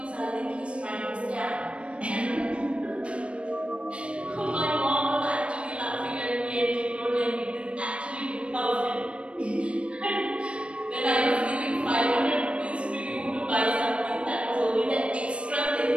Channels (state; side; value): late; left; 0.060 ms